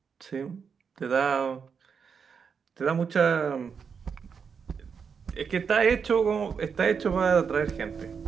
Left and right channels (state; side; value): quieter; left; 6.3 dB